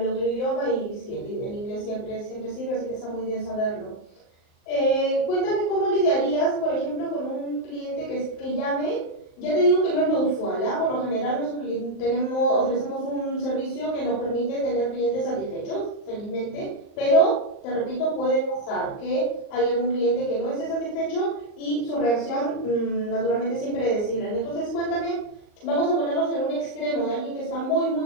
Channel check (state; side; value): late; right; 38 ms